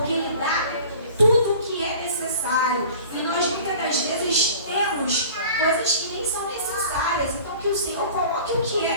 Ele dá tudo o que é necessário. E nós muitas das vezes temos coisas que nem são necessárias. Então que o Senhor coloque o que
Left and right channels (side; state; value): both; inverted; correlation -0.44